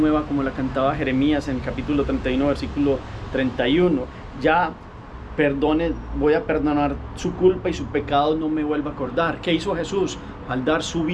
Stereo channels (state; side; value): identical; both; correlation 1.00